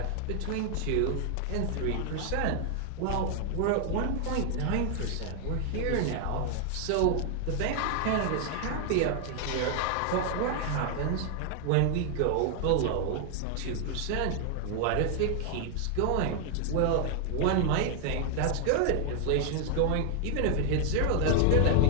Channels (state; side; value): different; both; correlation 0.00